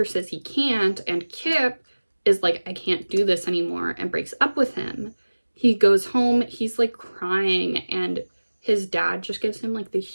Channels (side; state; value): both; inverted; correlation -1.00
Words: says he can't, and Kip is like, I can't do this anymore, and breaks up with him. He goes home, he's like crying, and his dad just gives him like the